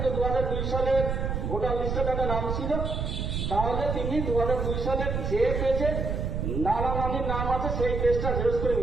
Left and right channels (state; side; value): noise; right; rumble, 2 dB below the sound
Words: 2002 সালের ভোটার লিস্টে তাদের নাম ছিল, তাহলে তিনি 2002 সালের যে পেজে নানা নানির নাম আছে সেই পেজটা জেরক্স করে